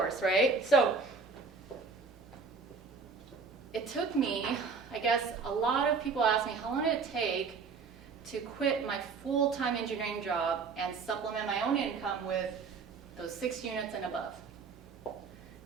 right? So it took me, I guess a lot of people ask me, how long did it take to quit my full-time engineering job and supplement my own income with those 6 units and above? It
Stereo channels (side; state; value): left; quieter; 5.0 dB